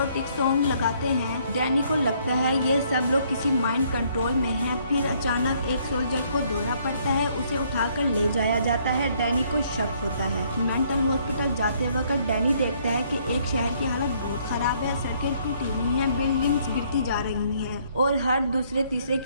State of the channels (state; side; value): inverted; both; correlation -0.66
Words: सॉन्ग लगाते हैं। डैनी को लगता है ये सब लोग किसी माइंड कंट्रोल में हैं। फिर अचानक एक सोल्जर को दौरा पड़ता है, उसे उठाकर ले जाया जाता है। डैनी को शक होता है। मेंटल हॉस्पिटल जाते वक्त डैनी देखता है कि एक शहर की हालत बहुत खराब है। सड़कें टूटी हुई हैं, बिल्डिंग्स गिरती जा रही हैं और हर दूसरे तीसरे